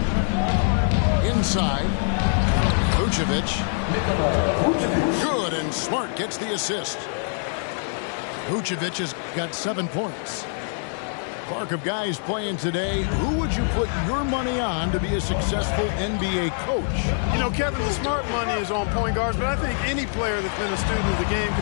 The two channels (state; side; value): silent; right; digital silence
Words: Inside, Vucevic. Good, and Smart gets the assist. Vucevic has got 7 points. Clark, of guys playing today, who would you put your money on to be a successful NBA coach? You know, Kevin, the smart money is on point guards, but I think any player that's been a student of the game